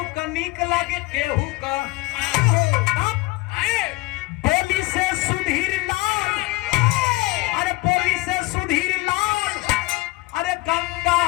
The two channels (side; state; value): right; quieter; 22.5 dB